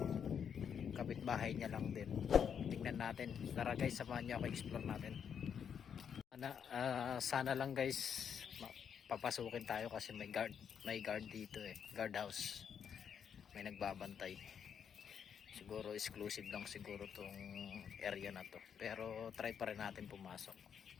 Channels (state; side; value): quieter; right; 7.7 dB